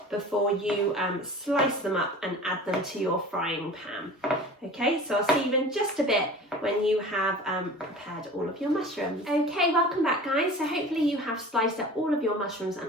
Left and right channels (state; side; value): normal; both; correlation 0.39